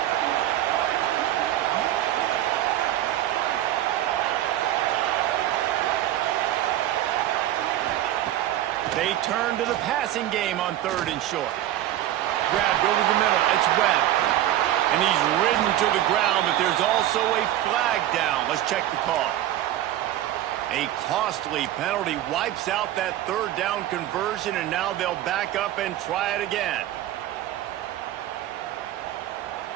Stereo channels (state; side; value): quieter; left; 13.2 dB